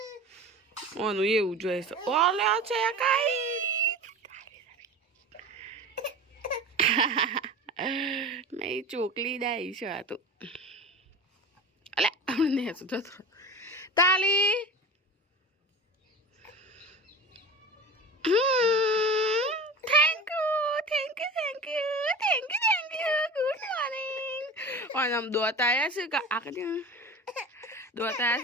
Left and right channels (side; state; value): both; normal; correlation 0.33